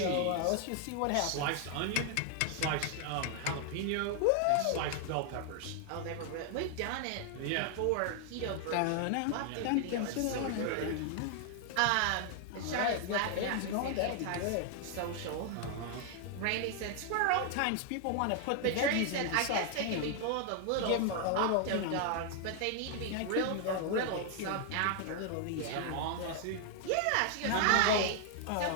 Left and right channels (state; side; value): different; both; correlation 0.00